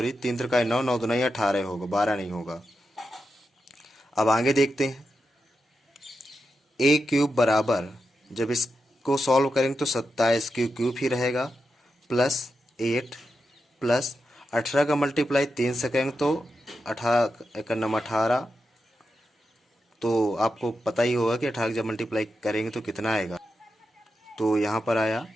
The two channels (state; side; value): normal; both; correlation 0.88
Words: त्रिकाई 9, 9 दुनाई 18 होगा, 12 नहीं होगा। अब आगे देखते हैं, a क्यूब बराबर जब इसको सॉल्व करेंगे तो 27 क्यूब ही रहेगा प्लस 8 प्लस 18 का मल्टीप्लाई 3 से करेंगे तो 18, तो आपको पता ही होगा कि 18 जब मल्टीप्लाई करेंगे तो कितना आएगा। तो यहाँ पर आया